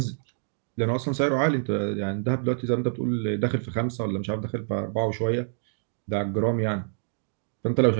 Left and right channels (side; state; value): left; silent; digital silence